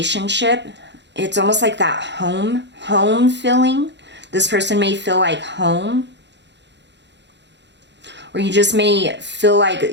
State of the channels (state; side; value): late; left; 0.51 ms